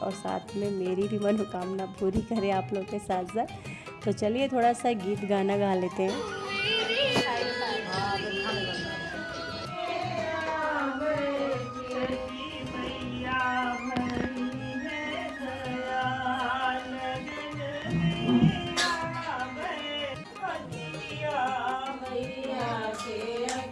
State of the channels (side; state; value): both; identical; correlation 1.00